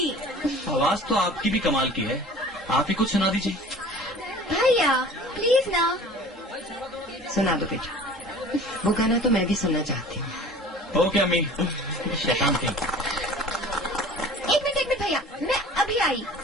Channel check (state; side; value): normal; both; correlation 0.44